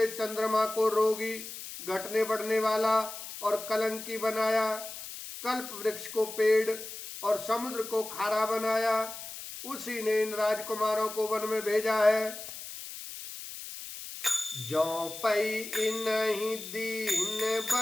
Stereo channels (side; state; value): left; noise; hiss, 11 dB below the sound